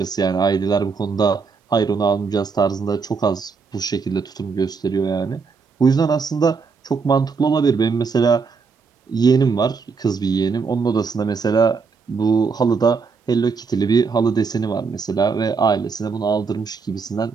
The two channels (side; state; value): left; quieter; 5.1 dB